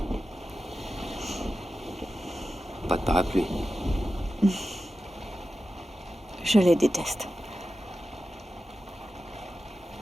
Pas de parapluie. Je les déteste.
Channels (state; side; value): normal; both; correlation 0.92